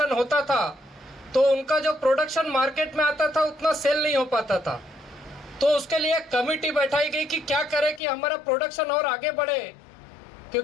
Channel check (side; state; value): right; drops out; at 8.0 s